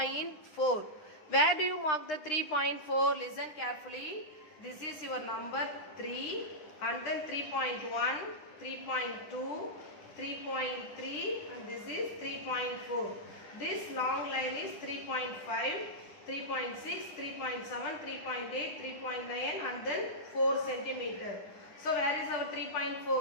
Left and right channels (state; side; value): late; right; 9.8 ms